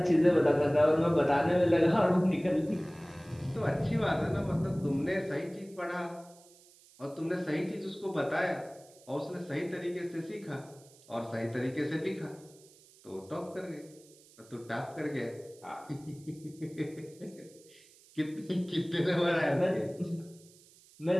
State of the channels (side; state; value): right; noise; hiss, 26 dB below the sound